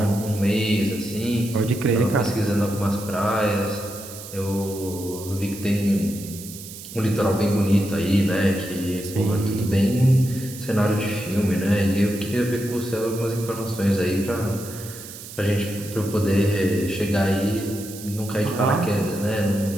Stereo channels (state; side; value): noise; right; hiss, 13 dB below the sound